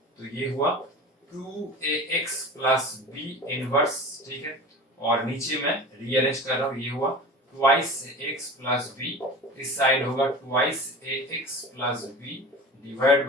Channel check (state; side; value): normal; both; correlation 0.35